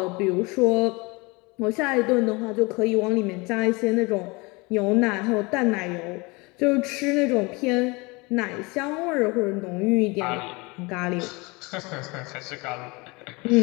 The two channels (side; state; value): right; quieter; 26.1 dB